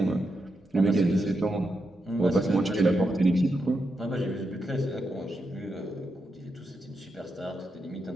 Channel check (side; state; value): both; normal; correlation 0.85